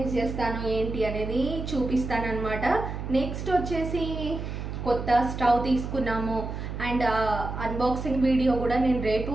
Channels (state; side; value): noise; right; hum, 6 dB below the sound